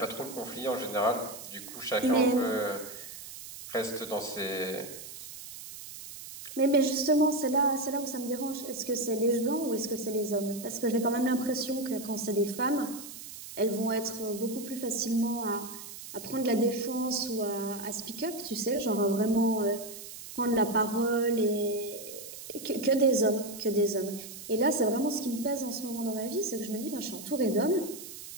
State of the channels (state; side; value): noise; right; hiss, 12 dB below the sound